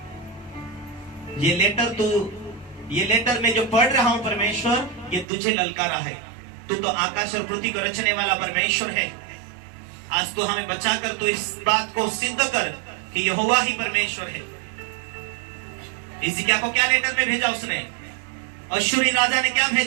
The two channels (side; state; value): left; drops out; at 5.2 s